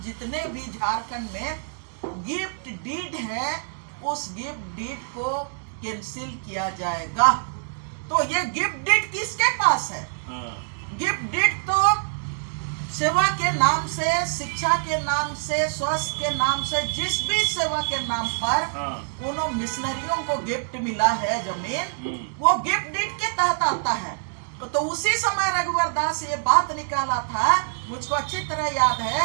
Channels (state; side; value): silent; left; digital silence